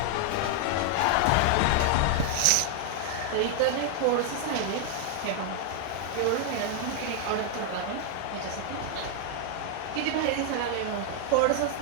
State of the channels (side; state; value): both; different; correlation 0.00